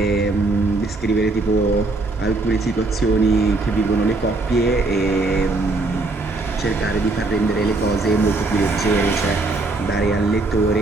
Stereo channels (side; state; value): left; quieter; 3.1 dB